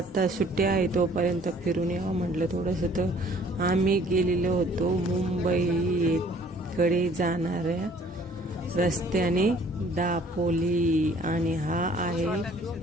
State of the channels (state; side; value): normal; both; correlation 0.56